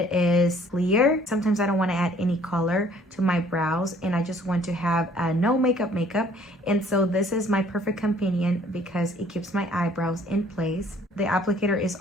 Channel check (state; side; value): normal; both; correlation 0.58